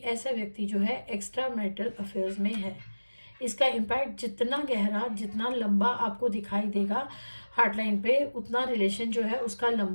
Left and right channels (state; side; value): inverted; both; correlation -1.00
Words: व्यक्ति जो है एक्स्ट्रा मैरिटल अफेयर्स में है। इसका इम्पैक्ट जितना गहरा, जितना लंबा आपको दिखाई देगा हार्ट लाइन पे, उतना रिलेशन जो है उसका